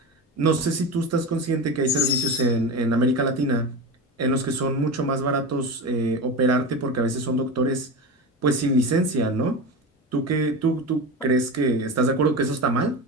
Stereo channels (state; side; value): normal; both; correlation 0.24